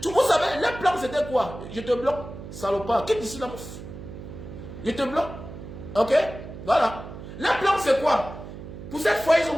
Vous savez, les plans c'était quoi? Je te bloque, salopard. Quitte ici là. Je te bloque. Ok? Voilà. Les plans c'est quoi? Pour cette fois, ils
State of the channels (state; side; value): noise; right; hum, 12 dB below the sound